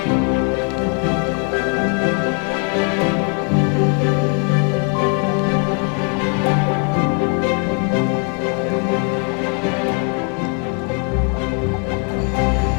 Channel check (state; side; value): quieter; right; 38.5 dB